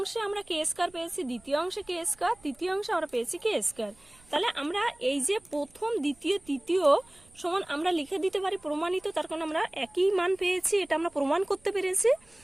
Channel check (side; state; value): right; noise; rumble, 29 dB below the sound